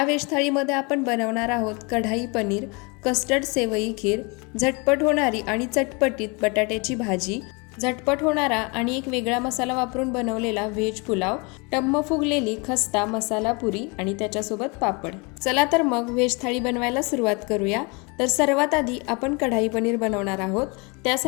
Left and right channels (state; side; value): quieter; right; 29.8 dB